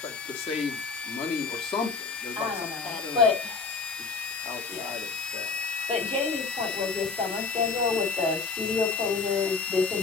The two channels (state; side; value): quieter; right; 4.6 dB